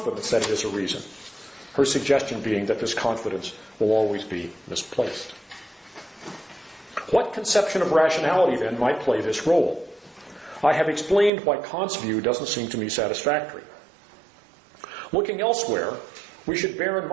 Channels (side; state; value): left; drops out; at 11.3 s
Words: that it is a reason. Her suggestion being that this confidence will always be misplaced. What conception of rationality, then, might play this role? I have explained why Kant's view doesn't seem to me satisfactory. Looking elsewhere, we should bear in